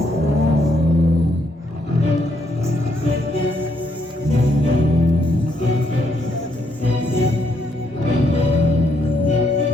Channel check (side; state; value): both; normal; correlation 0.74